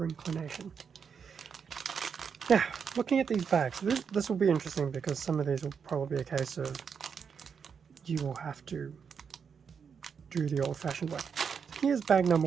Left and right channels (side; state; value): left; quieter; 6.5 dB